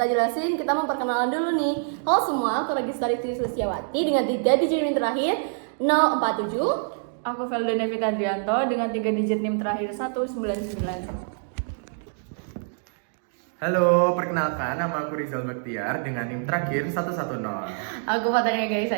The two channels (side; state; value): left; silent; digital silence